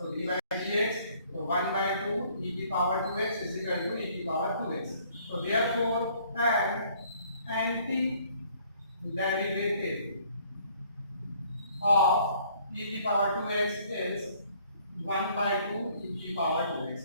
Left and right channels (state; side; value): inverted; both; correlation -0.61